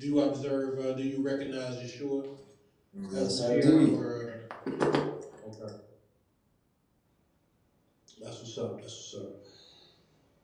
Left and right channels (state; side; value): identical; both; correlation 1.00